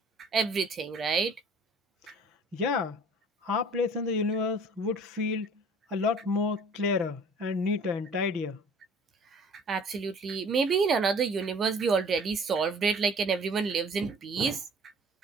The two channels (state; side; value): normal; both; correlation 0.50